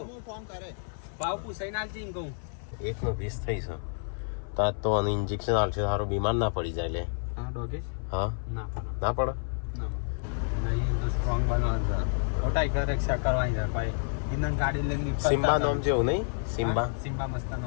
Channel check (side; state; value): right; silent; 58 dB below the other